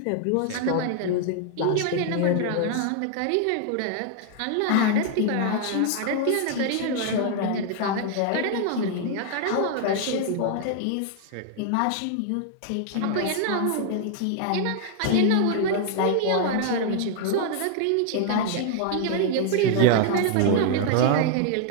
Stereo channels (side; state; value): both; different; correlation 0.00